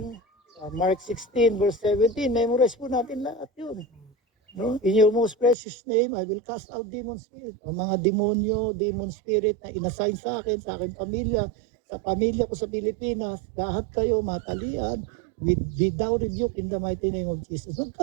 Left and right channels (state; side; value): drops out; left; at 5.6 s